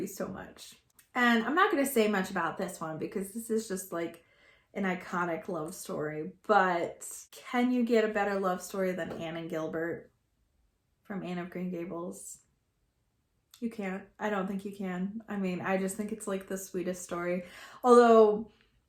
so much. And I'm not going to say much about this one because this is just like an iconic love story, but can you get a better love story than Anne and Gilbert from Anne of Green Gables? You can't. I don't think you can. I mean, I just think it's like the sweetest story. Although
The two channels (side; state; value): both; identical; correlation 1.00